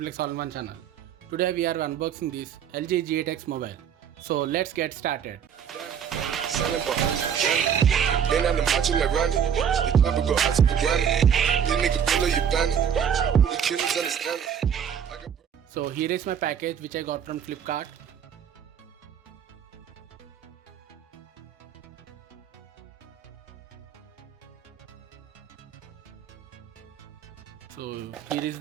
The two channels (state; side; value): quieter; left; 8.2 dB